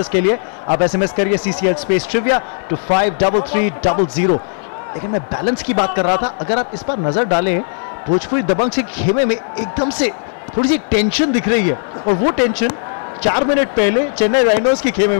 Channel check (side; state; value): right; silent; 69 dB below the other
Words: के लिए, आप SMS करिए CCL स्पेस ट्रिविया to 533300। लेकिन मैं बैलेंस की बात कर रहा था। अगर आप इस पर नजर डालें, भोजपुरी दबंग से खेमे में एकदम से थोड़ी सी टेंशन दिख रही है, और वो टेंशन 4 मिनट पहले चेन्नई राइनोज की खेमे